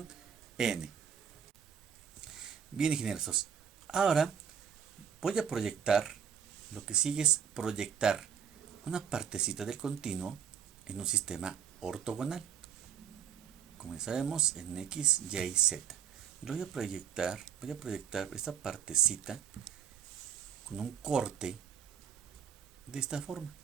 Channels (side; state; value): left; quieter; 8.1 dB